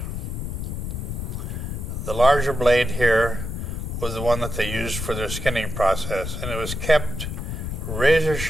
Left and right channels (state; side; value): noise; left; rumble, 5 dB below the sound